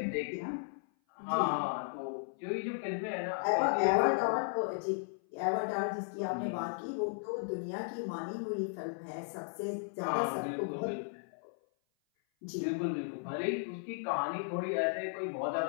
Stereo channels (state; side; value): silent; right; 54 dB below the other